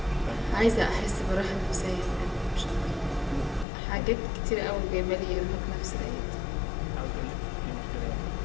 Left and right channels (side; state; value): right; drops out; at 3.7 s